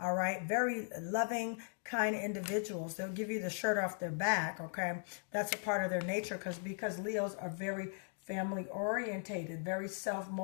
right. Very loving, kind individuals. They'll give you the shirt off their back. Okay. That's a part of their nature because Leos are very family orientated, very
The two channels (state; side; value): silent; right; 52 dB below the other